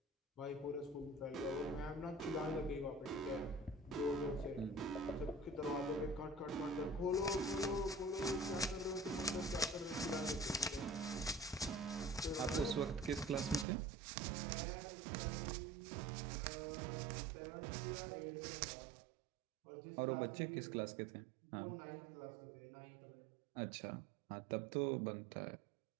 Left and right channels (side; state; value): left; drops out; at 13.7 s